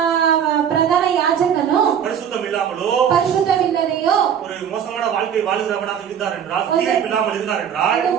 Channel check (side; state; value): left; quieter; 8.6 dB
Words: ಪ್ರಧಾನ ಯಾಜಕನು பரிசுத்தம் இல்லாமலோ ಪರಿಶುದ್ಧವಿಲ್ಲದೆಯೋ ஒரு மோசமான வாழ்க்கை வாழுகிறவனாக இருந்தார் என்றால், தீர்ப்பு இல்லாமல் இருந்தார் என்றால், ಒಂದು